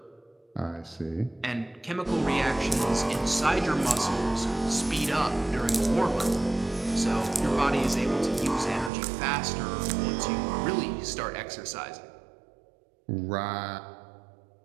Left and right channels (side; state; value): left; drops out; at 8.9 s